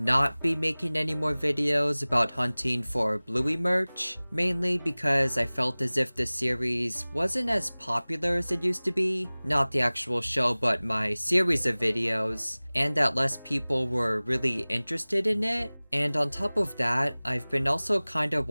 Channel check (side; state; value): both; inverted; correlation -1.00